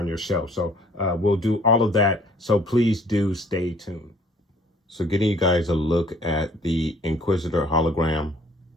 your shelf. So we'll do all of that. So please do stay tuned. So getting you guys a look at the Inquisitor hologram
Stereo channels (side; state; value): both; normal; correlation 0.57